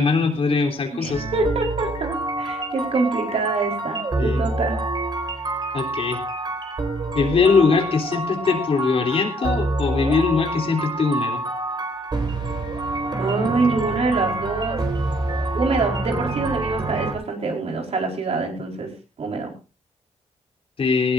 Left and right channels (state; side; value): normal; both; correlation 0.63